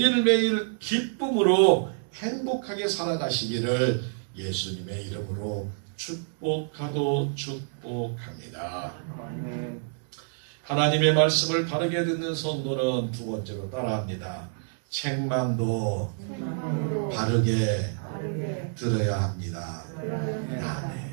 기쁨으로 행복하게 살아가시기를 예수님의 이름으로 축복하고 축복합니다. 하나님의 말씀을 바르게 듣는 성도는 두 번째로 따라합니다. 책망도 바르게 들어야 합니다.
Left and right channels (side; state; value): left; silent; 60 dB below the other